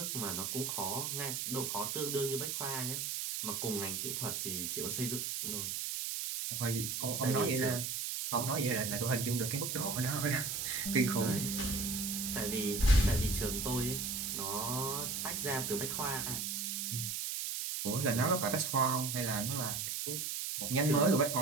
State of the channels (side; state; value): right; noise; hiss, 2 dB below the sound